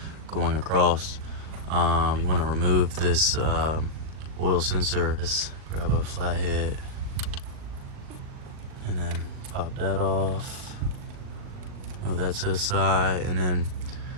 going across. You want to remove this oil sensor. Just grab a flathead and then pop that off. Move that to the side, and then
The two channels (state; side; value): late; left; 39 ms